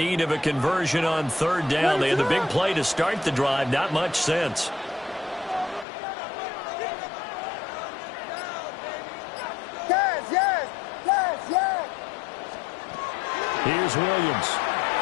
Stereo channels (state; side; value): drops out; right; at 5.9 s